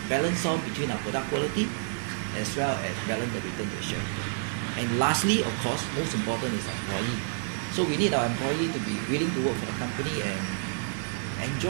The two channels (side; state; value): left; silent; digital silence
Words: balance off between our product quality as well as balance the return to the shareholder. And lastly, of course, most important is employee. So we need our employee to be willing to work for the company and